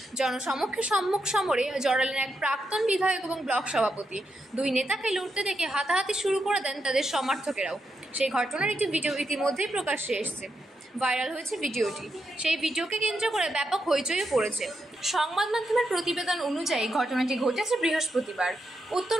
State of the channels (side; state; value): both; normal; correlation 0.83